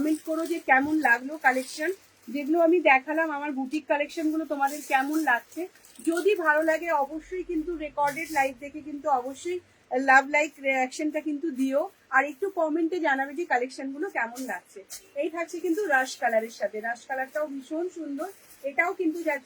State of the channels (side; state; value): both; identical; correlation 1.00